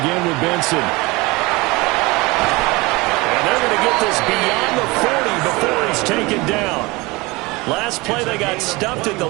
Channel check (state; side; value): quieter; left; 23.5 dB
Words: with Benson. And they're going to get this beyond the 40 before he's taken down. Last play they got stuffed at the